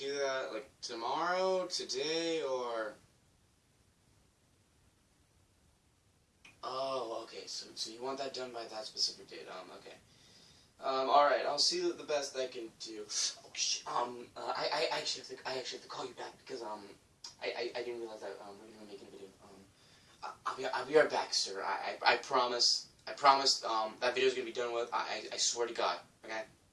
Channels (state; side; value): identical; both; correlation 1.00